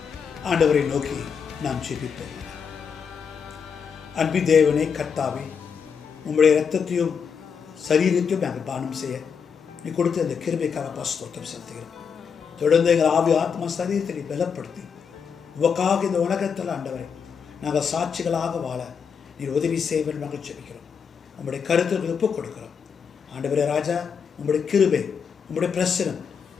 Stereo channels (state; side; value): quieter; right; 6.5 dB